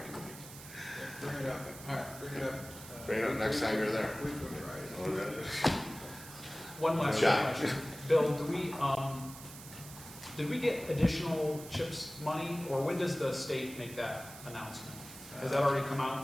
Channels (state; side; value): noise; right; hiss, 15 dB below the sound